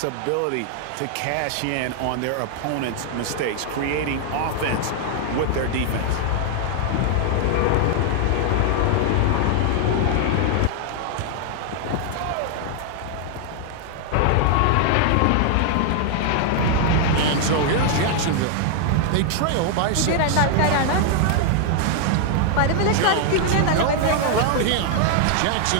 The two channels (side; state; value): both; different; correlation 0.00